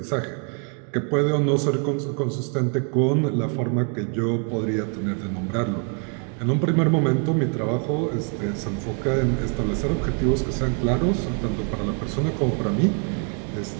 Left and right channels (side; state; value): left; quieter; 40.0 dB